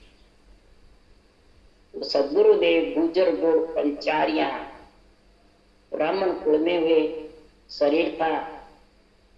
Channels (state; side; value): identical; both; correlation 1.00